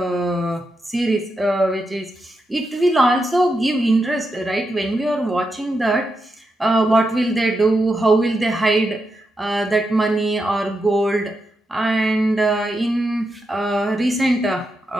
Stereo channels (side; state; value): both; normal; correlation 0.85